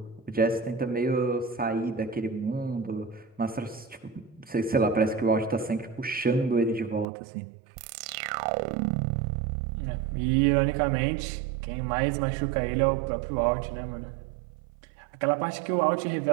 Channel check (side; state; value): left; drops out; at 7.1 s